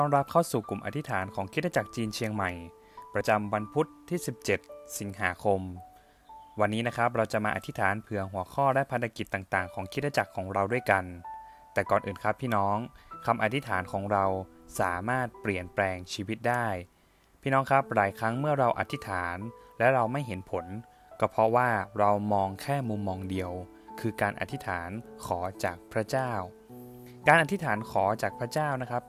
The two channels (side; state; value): both; identical; correlation 1.00